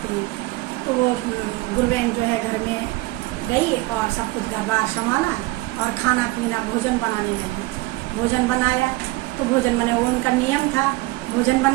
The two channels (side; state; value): left; quieter; 20.4 dB